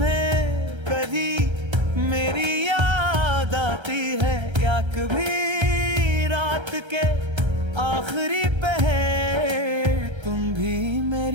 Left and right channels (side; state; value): left; late; 1.3 ms